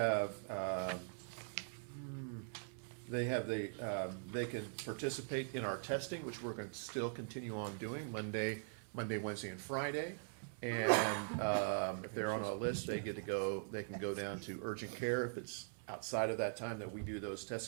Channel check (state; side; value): silent; left; digital silence